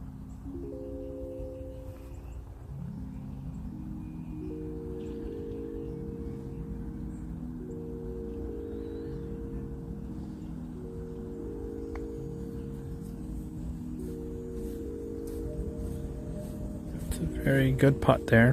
Very good putt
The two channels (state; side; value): identical; both; correlation 1.00